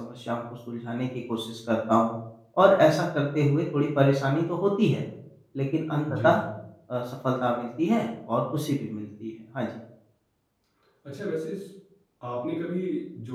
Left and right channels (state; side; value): identical; both; correlation 1.00